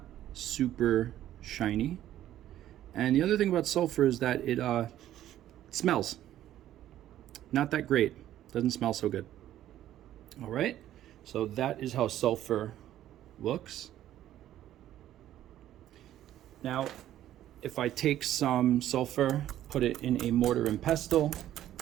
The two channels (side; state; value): left; quieter; 12.5 dB